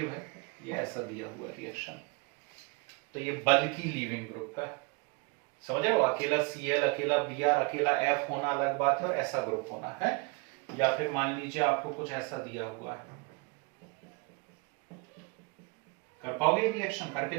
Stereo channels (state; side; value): quieter; left; 29.4 dB